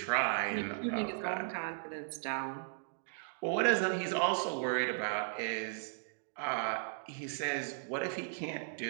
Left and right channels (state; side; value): silent; left; digital silence